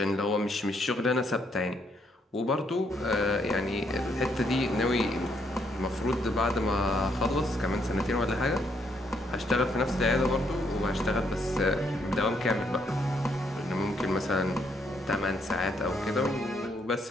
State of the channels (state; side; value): normal; both; correlation 0.73